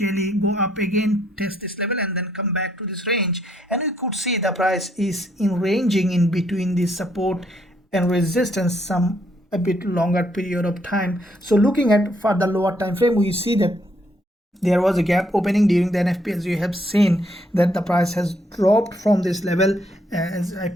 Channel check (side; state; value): both; normal; correlation 0.71